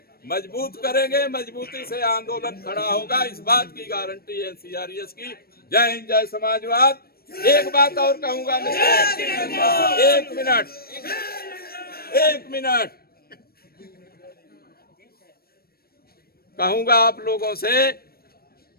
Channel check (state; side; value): late; right; 0.44 ms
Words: मजबूत करेंगे, मजबूती से आंदोलन खड़ा होगा, इस बात की गारंटी है सीआरएस की। जय हिंद, जय समाजवाद। एक बात और कहूंगा मित्र, एक मिनट कहूंगा आप लोगों से